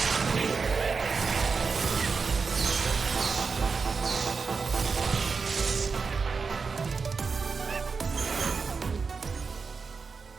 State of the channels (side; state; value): left; quieter; 5.0 dB